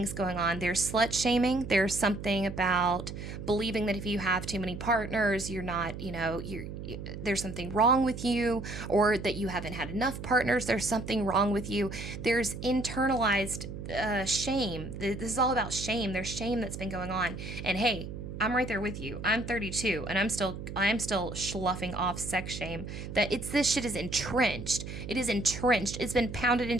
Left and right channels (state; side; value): noise; right; hum, 9 dB below the sound